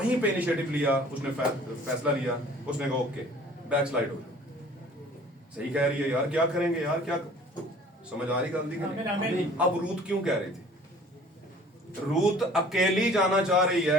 पे इनिशिएटिव लिया, उसने फैसला लिया, उसने कहा ओके बैक स्लाइड हो जाओ, सही कह रही है यार, क्या करेंगे यार, क्या समझ आ रही गलती की। अब रूथ क्यों कह रही थी, रूथ अकेली जाना चाह रही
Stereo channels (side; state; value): both; normal; correlation 0.50